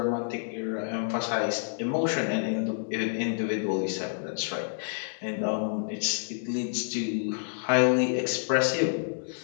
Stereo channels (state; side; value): silent; right; digital silence